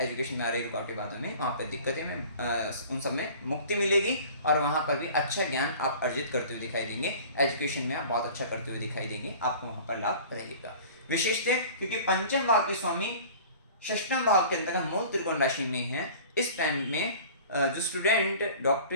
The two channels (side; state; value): both; inverted; correlation -0.44